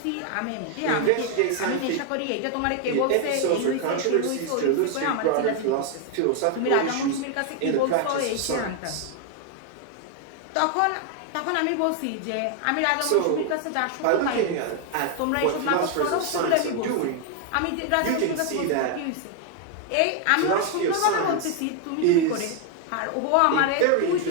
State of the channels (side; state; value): both; different; correlation 0.01